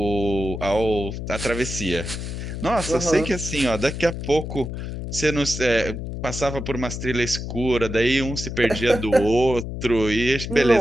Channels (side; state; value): left; noise; hum, 6 dB below the sound